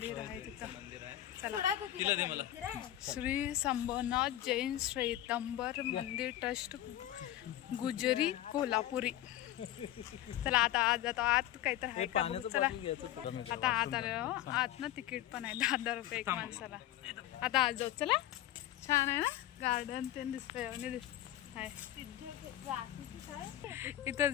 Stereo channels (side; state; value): right; quieter; 13.6 dB